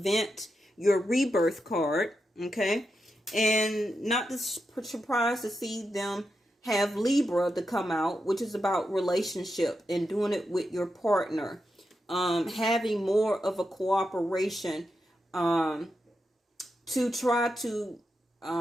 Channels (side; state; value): both; normal; correlation 0.87